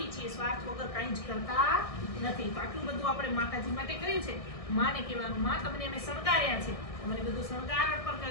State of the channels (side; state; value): right; late; 1.6 ms